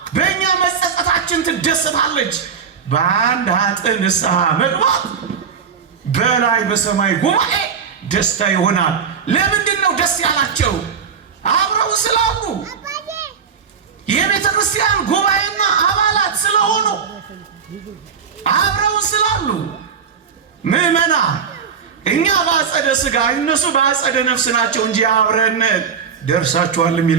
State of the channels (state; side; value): quieter; left; 6.7 dB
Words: በእኛ መጸጸታችን ትደሰታለች። በአንድ ኃጥእ ንስሐ መግባት በላይ በሰማይ ጉባኤ ደስታ ይሆናል። ለምንድን ነው ደስ ያላቸው? አብረው ስላሉ፣ የቤተ ክርስቲያን ጉባኤና አባላት ስለሆኑ፣ አብረው ስላሉ። ምዕመና እኛ በአጸደ ሥጋ እነሱ በአጸደ ነፍስ ናቸው እንጂ አብረን ደርሳችኋል